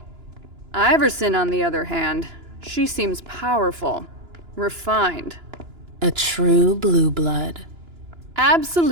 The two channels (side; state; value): left; late; 2.9 ms